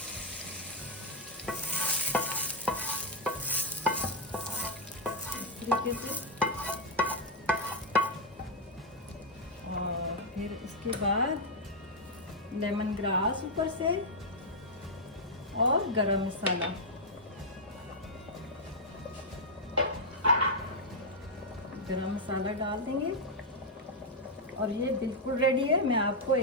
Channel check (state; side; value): normal; both; correlation -0.02